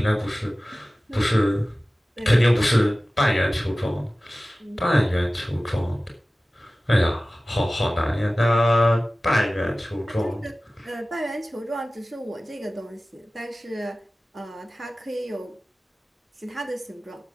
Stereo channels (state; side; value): normal; both; correlation 0.97